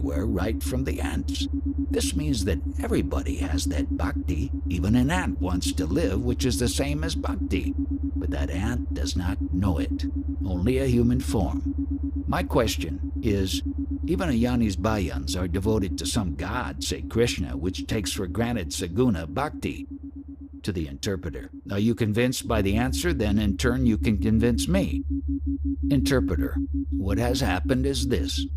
right from the ants. This means that everybody has that bhakti. Even an ant wants to live, which is the same as bhakti. But that ant does not know it, only a human form. My question is, even a Yani's bhajans are devoted to some god, say Krishna, which takes for granted saguna bhakti. To the interpreter, are you convinced by the answer? Then in turn you can convince me. Interpreter, what has happened is this.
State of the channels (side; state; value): both; identical; correlation 1.00